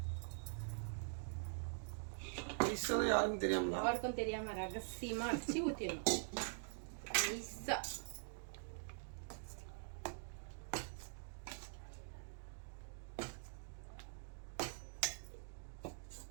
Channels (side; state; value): left; silent; digital silence